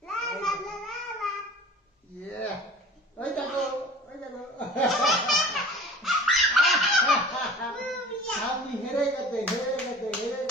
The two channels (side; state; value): both; normal; correlation 0.42